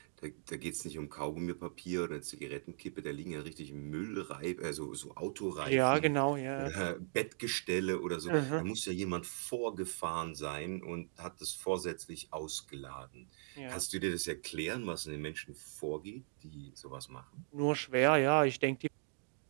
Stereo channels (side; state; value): left; silent; digital silence